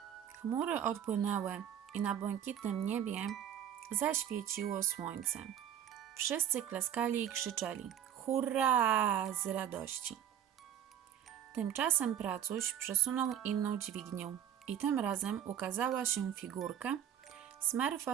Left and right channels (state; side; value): quieter; left; 9.8 dB